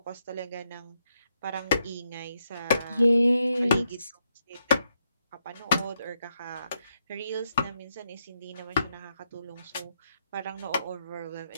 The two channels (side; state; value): both; inverted; correlation -0.81